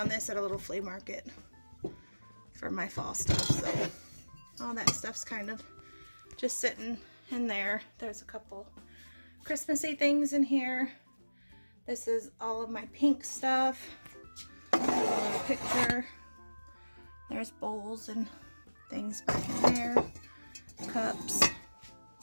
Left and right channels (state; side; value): inverted; both; correlation -1.00